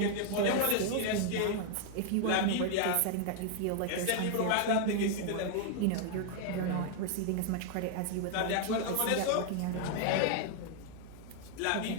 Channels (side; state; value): both; different; correlation 0.00